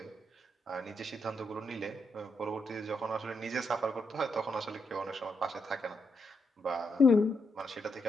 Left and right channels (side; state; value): both; normal; correlation 0.80